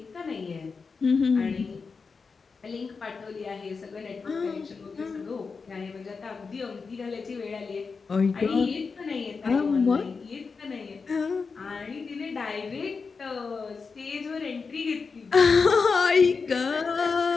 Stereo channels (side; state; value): right; quieter; 4.9 dB